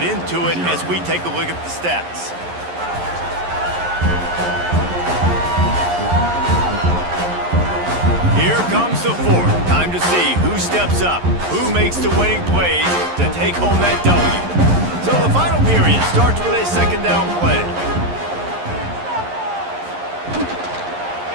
into it as we take a look at the stats. Here comes the fourth. Time to see who steps up, who makes the winning plays to take home that W. So the final period starts with a second down play.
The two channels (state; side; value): late; left; 11 ms